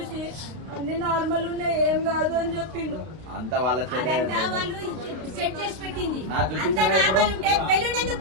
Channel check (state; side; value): late; left; 32 ms